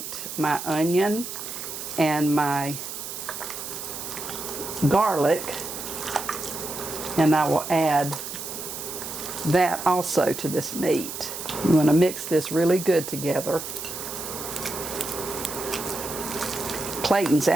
my onion and my garlic, and I will add that also to this meat. You want to mix this really good together. Clayton's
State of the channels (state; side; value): noise; right; hiss, 8 dB below the sound